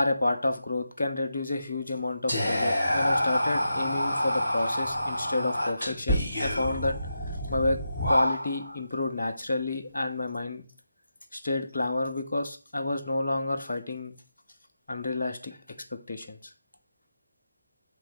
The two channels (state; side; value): inverted; both; correlation -0.87